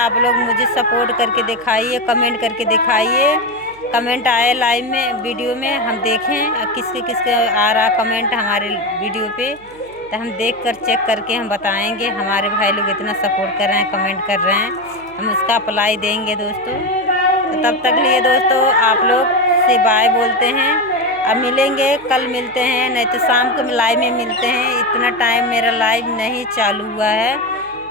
लोग मुझे सपोर्ट करके दिखाइए, कमेंट करके दिखाइए। कमेंट आए लाइव में वीडियो में, हम देखें किसके आ रहा कमेंट हमारे वीडियो पे, तो हम देख कर चेक करके हम बताएंगे। हमारे भाई लोग इतना सपोर्ट कर रहे हैं, कमेंट कर रहे हैं, हम उसका अप्लाई देंगे दोस्तों। तो तब तक लिए दोस्तों आप लोग से बाय बोलते हैं। अब मिलेंगे, कल मिलते हैं, नहीं तो शाम को लाइव में मिलते हैं। इतना टाइम मेरा लाइव नहीं चालू हुआ है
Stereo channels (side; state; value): right; noise; hum, 26 dB below the sound